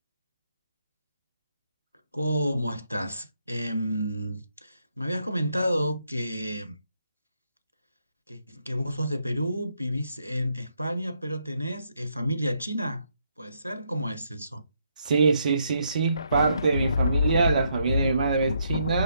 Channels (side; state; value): both; inverted; correlation -0.76